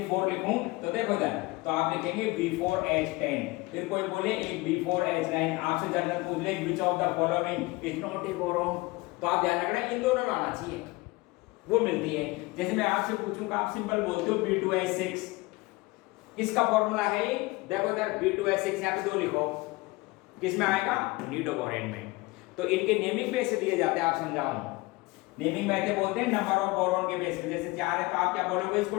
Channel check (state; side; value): quieter; right; 22.7 dB